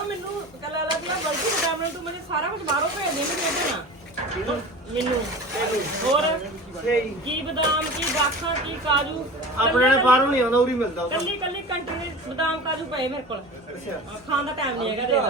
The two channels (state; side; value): normal; both; correlation 0.35